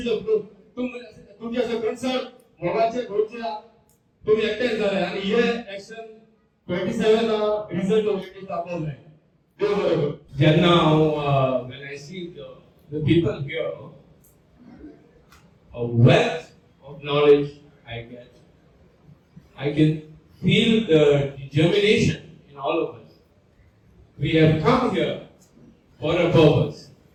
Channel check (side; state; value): both; identical; correlation 1.00